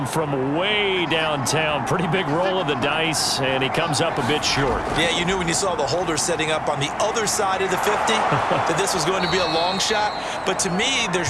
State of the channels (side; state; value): both; identical; correlation 1.00